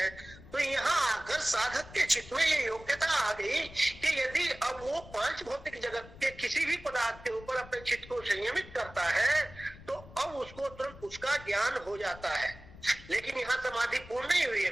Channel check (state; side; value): noise; left; rumble, 18 dB below the sound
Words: तो यहाँ आकर साधक के चित्त में ये योग्यता आ गई कि यदि अब वो पांच भौतिक जगत के किसी भी पदार्थ के ऊपर अपने चित्त को संयमित करता है, तो अब उसको तुरंत उसका ज्ञान हो जाता है। लेकिन यहाँ समाधि पूर्ण नहीं हुई है,